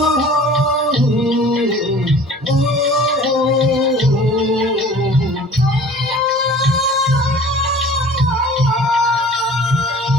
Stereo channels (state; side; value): normal; both; correlation 0.46